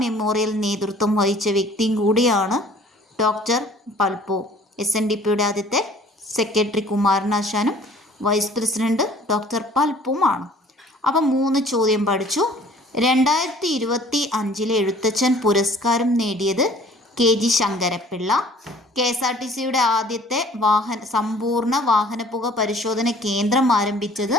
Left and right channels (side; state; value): both; normal; correlation 0.52